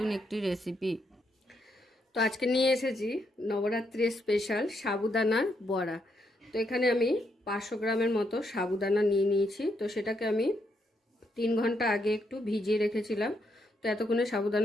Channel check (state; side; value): normal; both; correlation 0.78